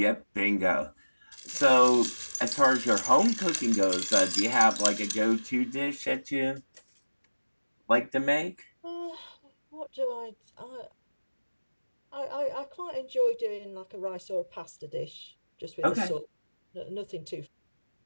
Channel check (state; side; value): inverted; both; correlation -1.00